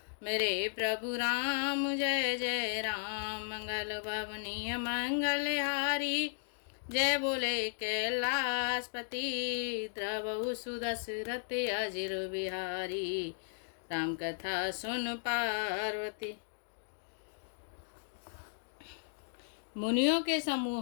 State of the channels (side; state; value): right; silent; digital silence